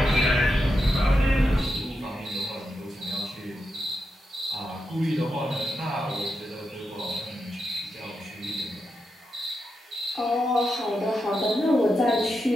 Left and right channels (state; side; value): normal; both; correlation 0.86